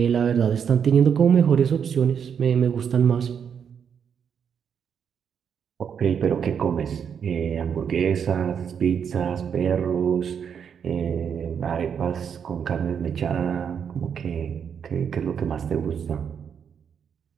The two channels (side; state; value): left; quieter; 7.5 dB